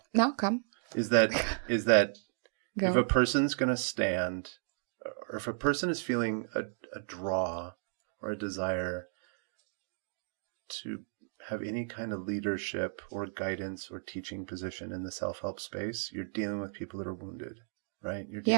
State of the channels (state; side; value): silent; left; digital silence